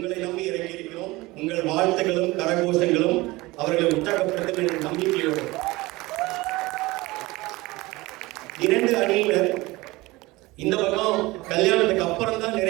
நம்பி இறங்கி இருக்கிறோம். உங்கள் வாழ்த்துக்களும் கரகோஷங்களும் அவர்களை உற்சாகப்படுத்தும் என்ற நம்பிக்கையோடு 2 அணியினர் இந்த பக்கம் கல்யாணத்துக்கு அப்புறம் தான்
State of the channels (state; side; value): quieter; left; 21.1 dB